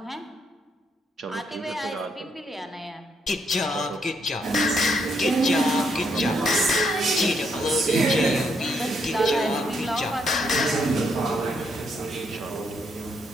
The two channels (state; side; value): normal; both; correlation 0.75